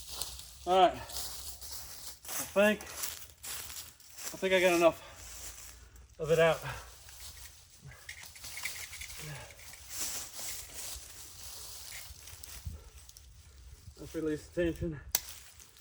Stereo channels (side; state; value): both; identical; correlation 1.00